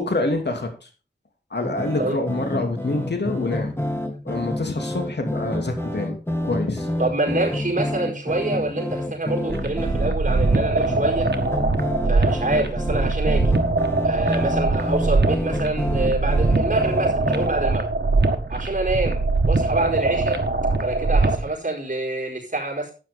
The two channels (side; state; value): both; normal; correlation 0.52